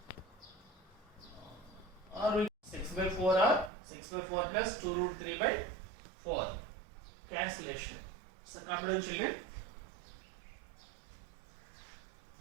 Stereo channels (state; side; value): drops out; left; at 3.7 s